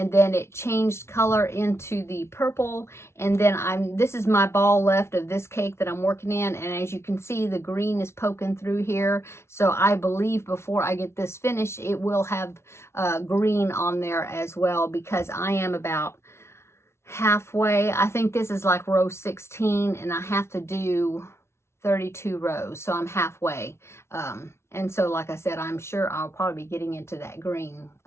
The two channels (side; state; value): right; late; 0.13 ms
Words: then it changed color into the purple. And then this is my ball left of this cake that I'm working in. And as you can see, the green is poking through here. So I believe before I get this finished, it will have green on there as well, because I am about halfway. I think this is like row 16, and I have to do 32 rows, so I'm halfway. And so like I said, I'm sure I'll probably be getting into that green